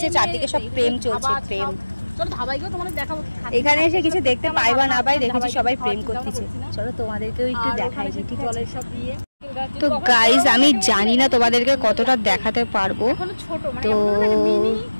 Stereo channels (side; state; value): both; inverted; correlation -1.00